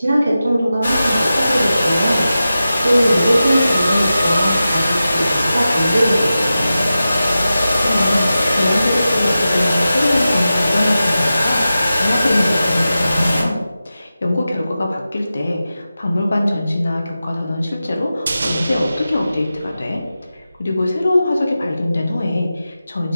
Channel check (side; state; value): both; inverted; correlation -0.93